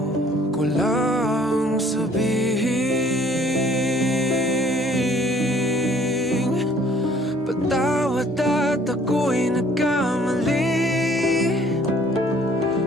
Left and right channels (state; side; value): normal; both; correlation 0.58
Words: ko lang sabihin, patawad at ako'y nagkamali.